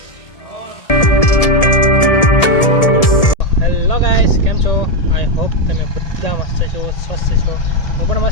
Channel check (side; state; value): right; late; 1.7 ms